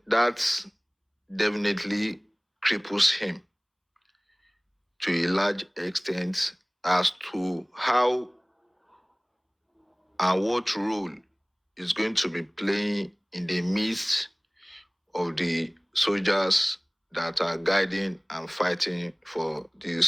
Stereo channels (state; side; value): identical; both; correlation 1.00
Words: that definitely cripples him to a large extent as to how and what role is going to be playing in the midst of the soldiers that are guiding and fighting for